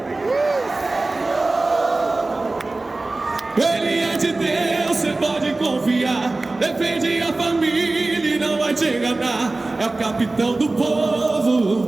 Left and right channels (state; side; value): quieter; left; 3.1 dB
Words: Ele é de Deus, você pode confiar. Defende a família e não vai te enganar. É o capitão do